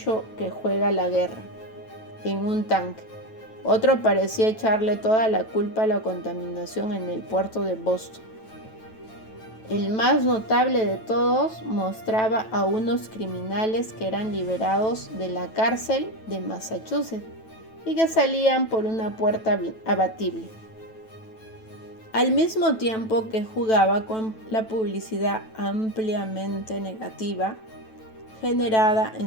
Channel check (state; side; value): late; right; 9.1 ms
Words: que juega la guerra en un tanque. Otro parecía echarle toda la culpa a la contaminación en el puerto de Boston. El más notable de todos mostraba a unos criminales que eran liberados de la cárcel de Massachusetts y que salían por una puerta abatible, al mismo tiempo que jugaba con la publicidad ampliamente negativa generada